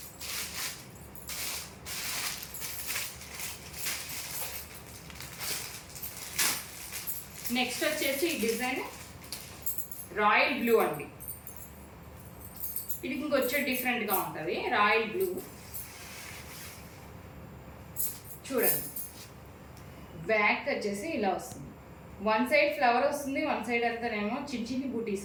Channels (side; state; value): both; identical; correlation 1.00